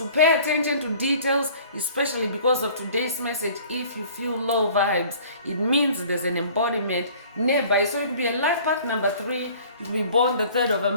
pay attention to details, especially because of today's message. If you feel low vibes, it means there's an embodiment nearby. So it could be a life path number 3. You could be born the 3rd of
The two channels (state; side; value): inverted; both; correlation -0.50